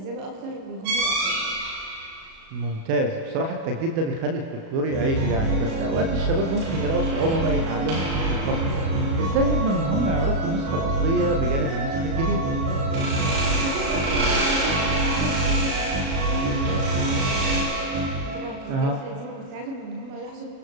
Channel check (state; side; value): late; left; 37 ms